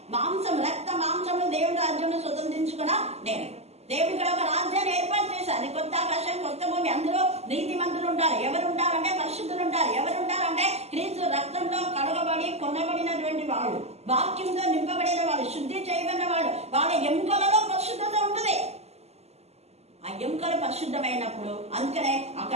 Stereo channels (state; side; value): late; left; 0.30 ms